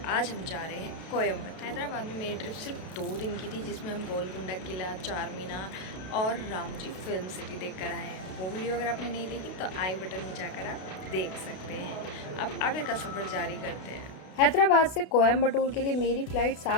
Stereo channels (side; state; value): right; late; 32 ms